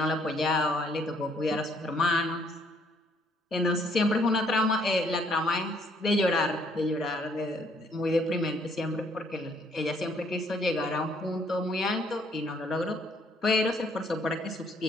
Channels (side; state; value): both; normal; correlation 0.66